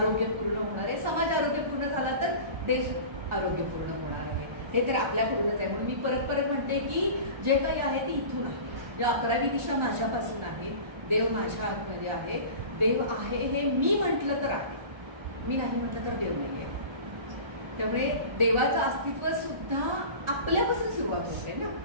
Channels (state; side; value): late; left; 1.4 ms